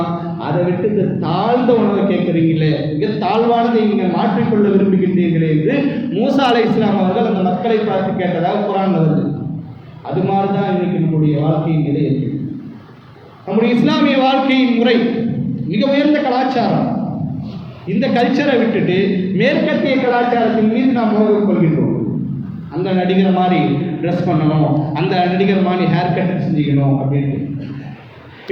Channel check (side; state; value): both; identical; correlation 1.00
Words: அதை விட்டு தாழ்ந்த உணவை கேட்குறீங்களே, மிக தாழ்வானதை நீங்கள் மாற்றிக்கொள்ள விரும்புகின்றீர்களே என்று மூசா அலைஹிஸ்ஸலாம் அவர்கள் அந்த மக்களை பார்த்து கேட்டதாக குர்ஆன்ல வருது. அது மாதிரி தான் இன்னைக்கு நம்முடைய வாழ்க்கையின் நிலை இருக்கு. நம்முடைய இஸ்லாமிய வாழ்க்கையின் முறை மிக உயர்ந்த கலாச்சாரம். இந்த கல்ச்சரை விட்டுட்டு மேற்கத்திய கலாச்சாரத்தின் மீது நாம் மோகம் கொள்கின்றோம். அந்த நடிகர் மாதிரி ட்ரெஸ் பண்ணணும், அந்த நடிகர் மாதிரி ஹேர் கட் செஞ்சுக்கணும் அப்படின்ட்டு.